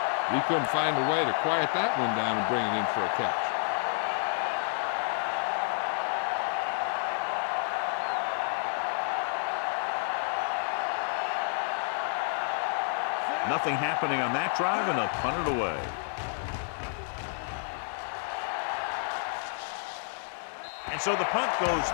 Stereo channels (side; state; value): right; silent; digital silence